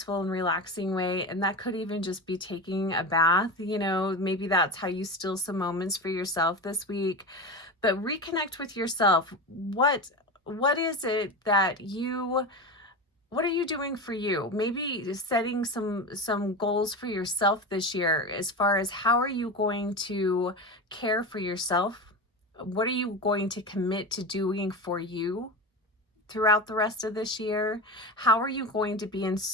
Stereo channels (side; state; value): both; normal; correlation 0.23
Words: and relaxing way, and that could even just be taking a bath, you know, maybe that's how you steal some moments for yourself this week. But reconnect with yourself. What is it that what are you doing for you? Maybe setting some goals for yourself this year, as far as how are you going to care for yourself? What are you going to commit to doing for you throughout the rest of this year? How are you going to be in